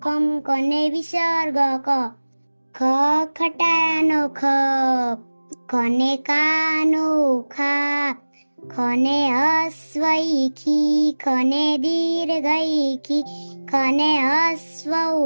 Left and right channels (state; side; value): inverted; both; correlation -1.00